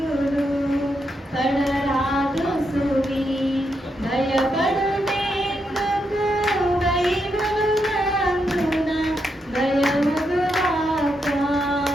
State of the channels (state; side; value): normal; both; correlation 0.82